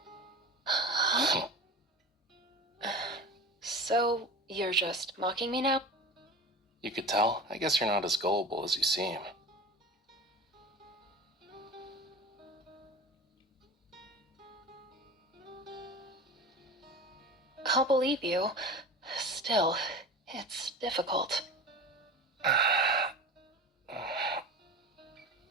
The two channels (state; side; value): normal; both; correlation 0.33